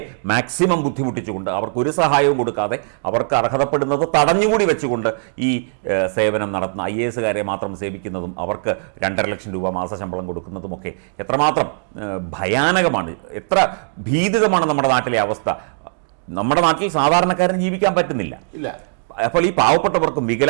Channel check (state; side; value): silent; left; digital silence